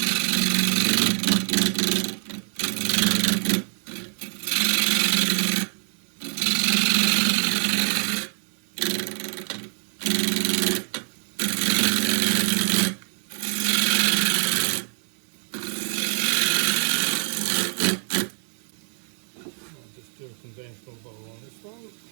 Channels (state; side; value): silent; left; 57 dB below the other